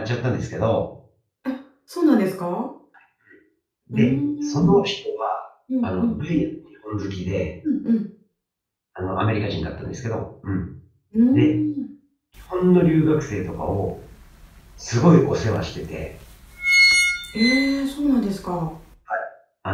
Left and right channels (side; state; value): both; identical; correlation 1.00